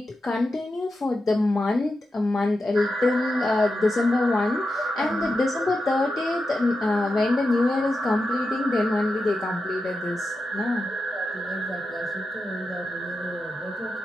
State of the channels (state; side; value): normal; both; correlation 0.89